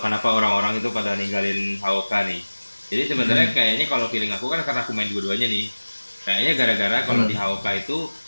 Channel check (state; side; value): inverted; both; correlation -1.00